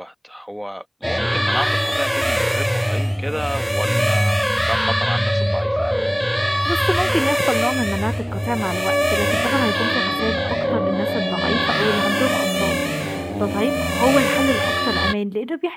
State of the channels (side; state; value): both; identical; correlation 1.00